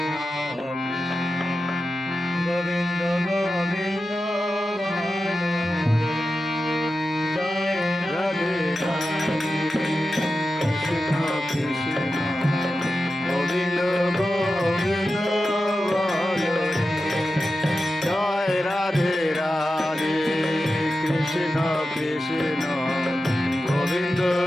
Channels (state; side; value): normal; both; correlation 0.92